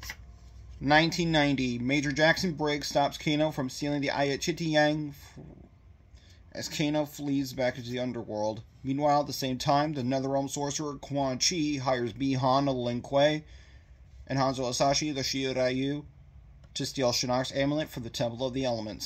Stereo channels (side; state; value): both; identical; correlation 1.00